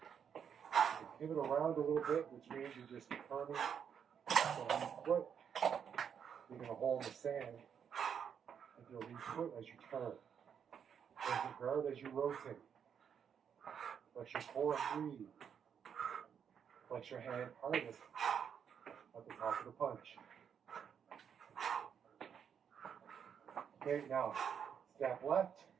pivot around a little bit, which means you're just turning the foot. You're going to hold the sand with your lead foot as you turn. Hold your guard as you rotate. Let your core breathe. Flex your hand hardest at the top of the punch. Okay, now step left,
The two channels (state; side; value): quieter; left; 7.7 dB